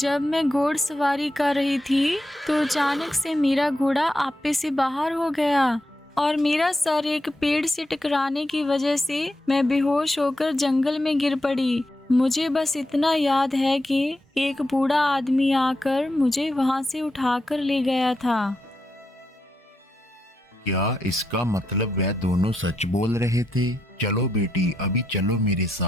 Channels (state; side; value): normal; both; correlation 0.84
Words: मैं घोड़सवारी कर रही थी तो अचानक से मेरा घोड़ा आपे से बाहर हो गया और मेरा सर एक पेड़ से टकराने की वजह से मैं बेहोश होकर जंगल में गिर पड़ी। मुझे बस इतना याद है कि एक बूढ़ा आदमी आकर मुझे वहां से उठाकर ले गया था। क्या इसका मतलब वह दोनों सच बोल रहे थे? चलो बेटी, अभी चलो मेरे